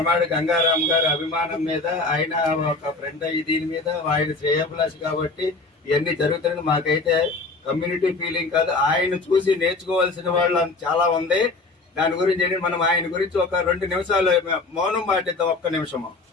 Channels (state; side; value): quieter; right; 3.5 dB